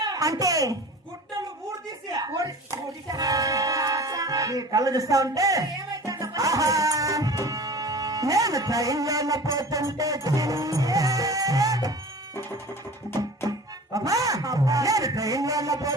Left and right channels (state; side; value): normal; both; correlation 0.40